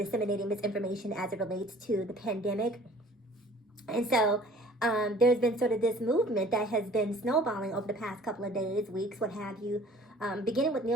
misinformation as it relates to the pandemic. And so there's been sort of this movement that has been snowballing over the past couple of days, weeks, what have you. Beginning with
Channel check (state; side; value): normal; both; correlation 0.51